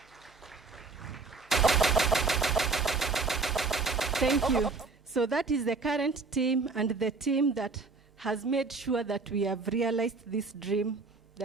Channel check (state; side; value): quieter; left; 4.1 dB